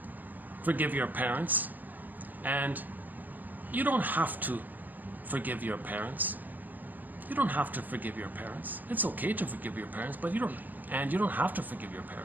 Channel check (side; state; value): left; late; 0.087 ms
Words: forgive your parents and you don't have to forgive your parents. You don't have to forgive your parents. It's okay to forgive your parents, but you don't have to forgive your